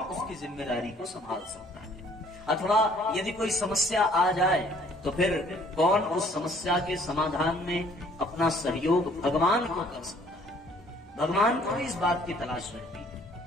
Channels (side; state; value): both; normal; correlation 0.59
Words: उसकी जिम्मेदारी को संभाल सकता है। अथवा यदि कोई समस्या आ जाए तो फिर कौन उस समस्या के समाधान में अपना सहयोग भगवान को कर सकता है। भगवान को इस बात की तलाश रहती है।